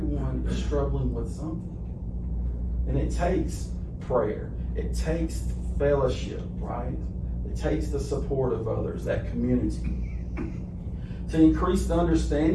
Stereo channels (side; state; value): both; identical; correlation 1.00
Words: is struggling with something. And it takes prayer. It takes fellowship, right? It takes the support of others, that community. to increase the